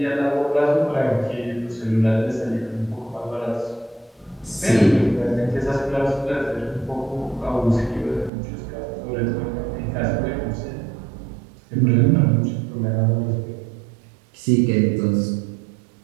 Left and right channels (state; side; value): drops out; left; at 8.3 s